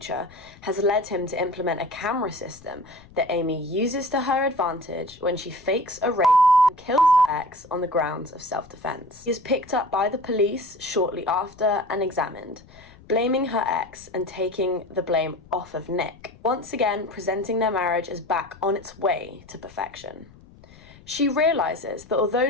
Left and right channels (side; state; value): left; noise; rumble, 23 dB below the sound